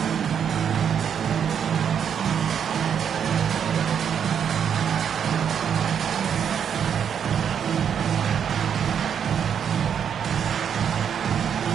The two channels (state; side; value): quieter; left; 8.0 dB